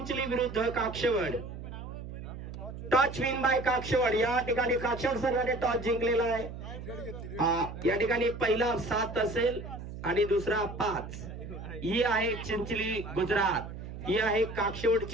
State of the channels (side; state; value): right; noise; hum, 10 dB below the sound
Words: विरुद्ध काक्षवड. टॉच विन बाय काक्षवड. या ठिकाणी काक्षवड संघाने टॉच जिंकलेला आहे. या ठिकाणी पहिला 7 असेल आणि दुसरा 5. ही आहे चिंचली गुजरात, ही आहे